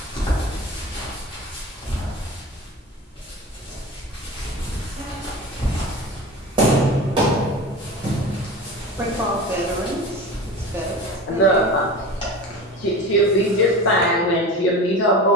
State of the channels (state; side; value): normal; both; correlation 0.32